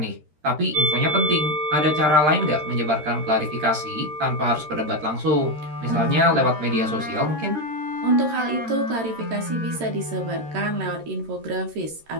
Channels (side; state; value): left; late; 13 ms